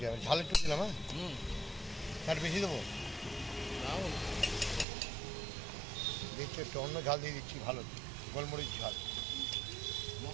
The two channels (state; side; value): drops out; left; at 4.9 s